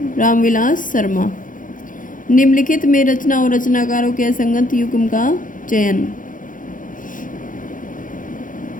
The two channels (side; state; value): right; late; 0.39 ms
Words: रामविलास शर्मा। निम्नलिखित में रचना और रचनाकारों के असंगत युग्म का चयन।